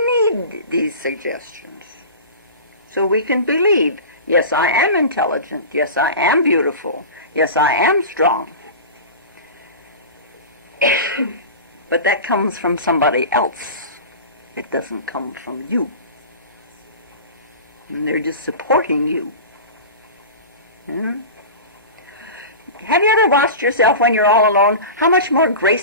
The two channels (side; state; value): both; inverted; correlation -0.32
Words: need these suggestions so we can believe, yes, I am intelligent. Yes, I am beautiful. Yes, I am strong. But that comes from somebody else. It doesn't come from you. And they're just supporting you. Have you ever watched yourself when you're all alone, how much more